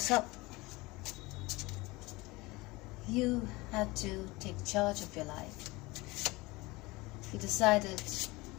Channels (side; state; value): right; quieter; 22.3 dB